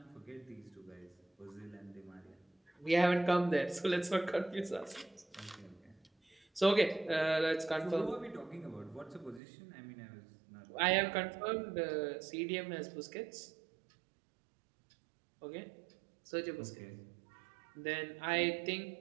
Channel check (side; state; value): left; drops out; at 9.4 s